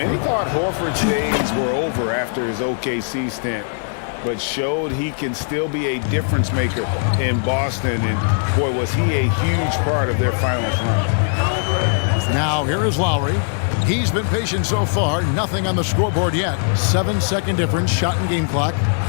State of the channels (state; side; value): silent; right; digital silence